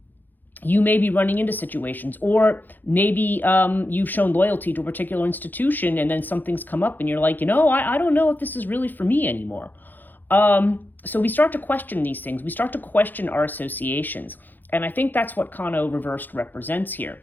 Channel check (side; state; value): right; late; 0.087 ms